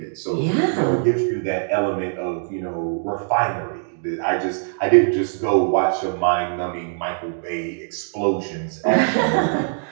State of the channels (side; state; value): left; silent; digital silence